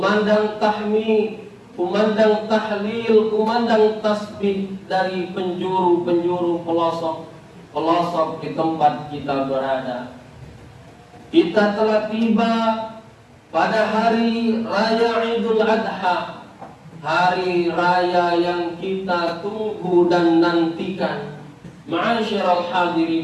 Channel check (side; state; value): both; identical; correlation 1.00